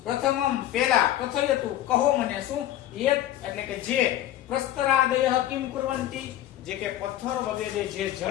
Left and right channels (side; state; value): right; quieter; 13.1 dB